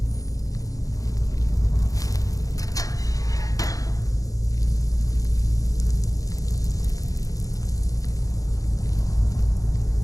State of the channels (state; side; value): late; right; 0.17 ms